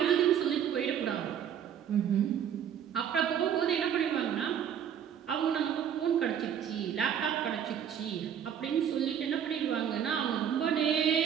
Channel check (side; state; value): left; quieter; 8.8 dB